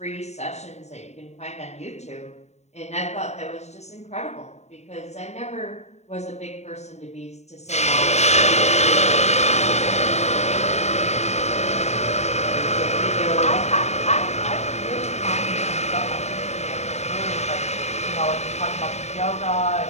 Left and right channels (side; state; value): right; late; 0.32 ms